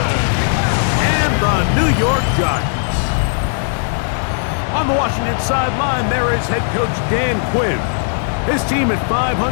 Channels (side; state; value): right; silent; 68 dB below the other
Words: and the New York Giants. On the Washington sideline, there is head coach Dan Quinn. His team at 500,